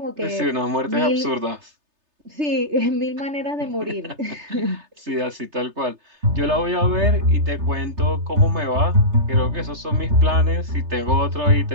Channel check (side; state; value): left; late; 3.3 ms